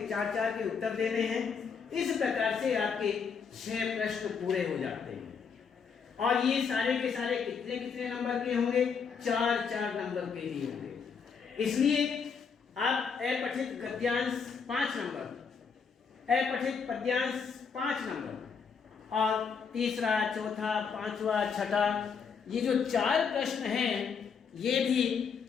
के उत्तर देने हैं। इस प्रकार से आपके 6 प्रश्न पूरे हो जाते हैं और ये सारे के सारे कितने नंबर के होंगे? 4-4 नंबर के ही होंगे। इसलिए आप अपठित गद्यांश 5 नंबर, अपठित पद्यांश 5 नंबर और तीसरा, चौथा, 5वां, 6ठा ये जो 4 प्रश्न हैं ये भी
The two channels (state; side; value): quieter; right; 6.0 dB